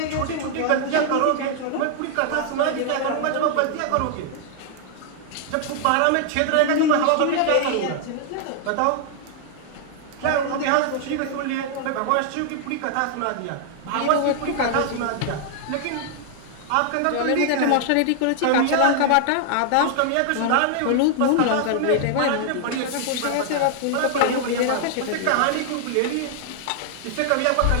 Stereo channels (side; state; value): both; different; correlation 0.00